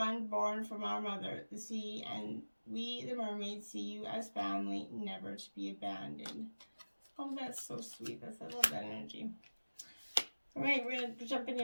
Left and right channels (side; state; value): both; inverted; correlation -1.00